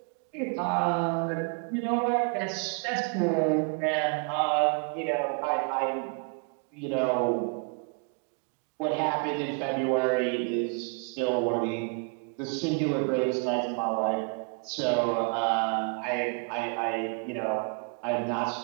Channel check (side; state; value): left; quieter; 37.9 dB